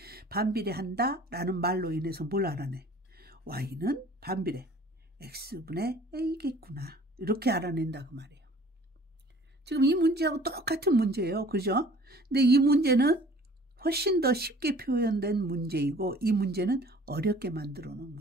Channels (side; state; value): both; normal; correlation 0.50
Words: 반비례한다 라는 말로 인해서 뭘 알아내? y는 반비례 x분의 a겠구나. 이렇게 알아낸다 그 말이에요. 지금 이 문제하고 똑같은 문제예요. 그죠? 근데 이 문제는 훨씬 더 쉽게 표현된 문제이고 이 문제는 어렵게 만들어 놓은